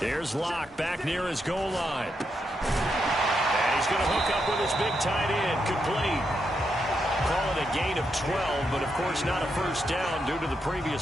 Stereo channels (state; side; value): normal; both; correlation 0.82